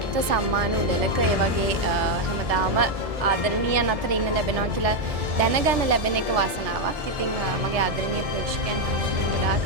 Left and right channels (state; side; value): late; left; 1.7 ms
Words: සම්මාන උළෙලක ඒ වගේ හැමදාම ආදරණීයන් අතර ඉන්න ලැබෙනවා කියලා දැනගන්න ලැබෙන එක වාසනාවක්. ඉතින් මගේ ආදරණීය ප්‍රේක්ෂකයන් හැමෝටම